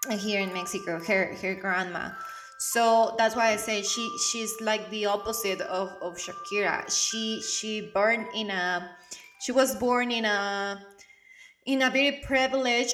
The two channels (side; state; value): both; identical; correlation 1.00